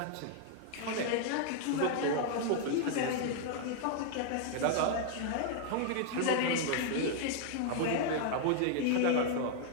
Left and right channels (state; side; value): different; both; correlation 0.00